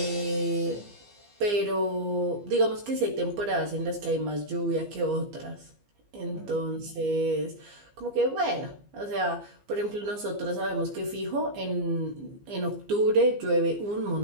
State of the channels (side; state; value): left; late; 15 ms